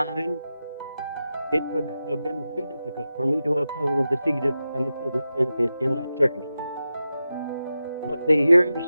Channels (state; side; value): inverted; both; correlation -0.91